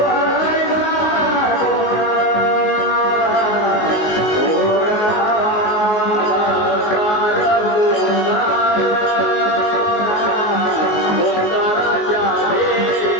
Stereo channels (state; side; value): late; right; 19 ms